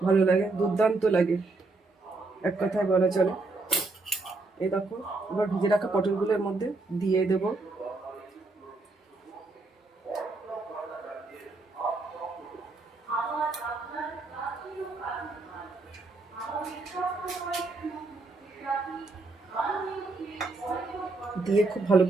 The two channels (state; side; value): quieter; left; 3.4 dB